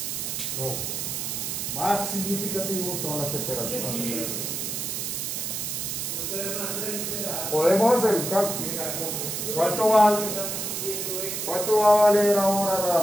Lo más significativo son las temperaturas. Podemos hacer un cálculo. ¿Cuánto va a valer ahora la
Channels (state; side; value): noise; right; hiss, 3 dB below the sound